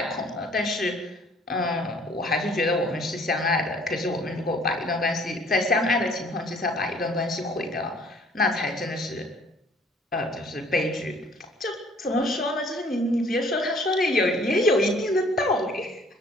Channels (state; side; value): normal; both; correlation 0.57